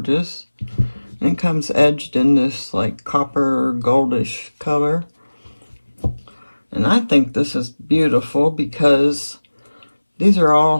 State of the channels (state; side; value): inverted; both; correlation -1.00